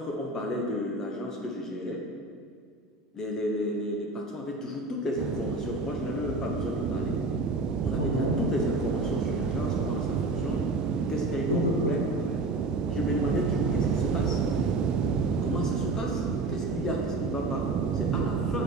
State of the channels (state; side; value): quieter; left; 3.1 dB